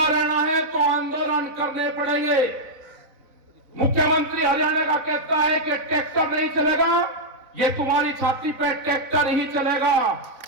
रहना है तो आंदोलन करने पड़ेंगे। मुख्यमंत्री हरियाणा का कहता है कि ट्रैक्टर नहीं चलेगा, ये तुम्हारी छाती पे ट्रैक्टर ही चलेगा।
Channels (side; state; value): left; late; 4.0 ms